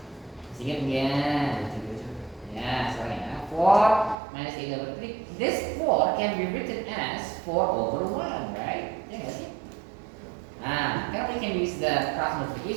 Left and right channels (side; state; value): left; drops out; at 4.2 s